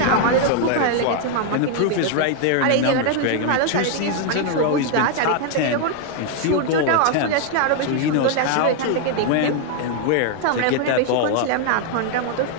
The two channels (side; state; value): both; different; correlation 0.00